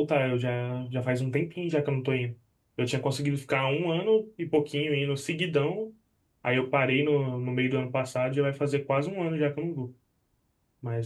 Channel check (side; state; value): both; identical; correlation 1.00